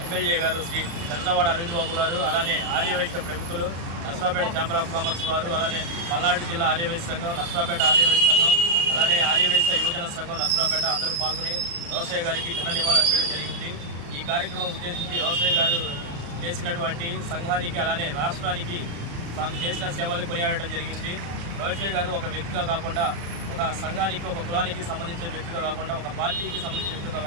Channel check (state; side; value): late; left; 35 ms